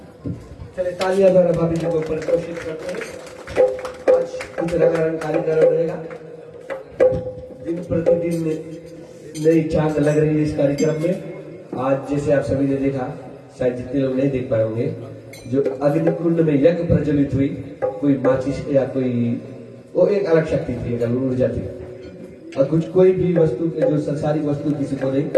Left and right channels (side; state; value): both; identical; correlation 1.00